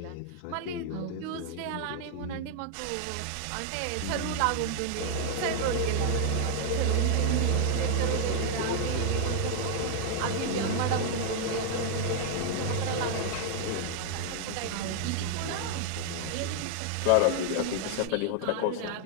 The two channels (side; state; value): both; different; correlation 0.00